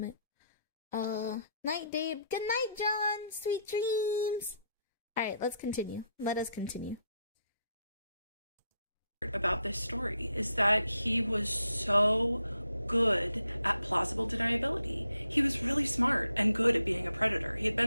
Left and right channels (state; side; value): inverted; both; correlation -0.76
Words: Night, Dave. Good night, John. Sweet dreams. Alright, let's continue. Let us continue. About this story is that he was so good at plausible deniability. He was really smart and good at being a predator. He had